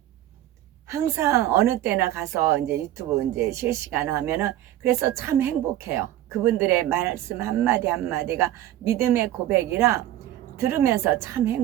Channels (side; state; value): left; quieter; 13.3 dB